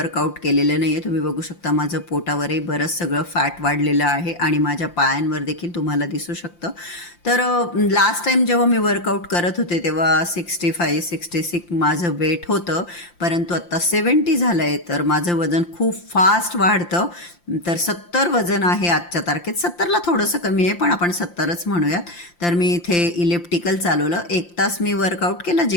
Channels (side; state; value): right; late; 5.8 ms